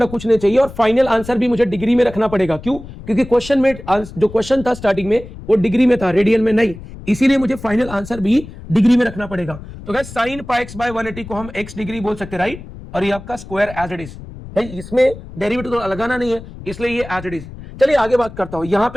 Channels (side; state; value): left; noise; rumble, 14 dB below the sound